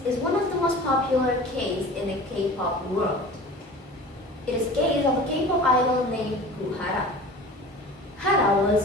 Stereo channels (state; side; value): normal; both; correlation 0.39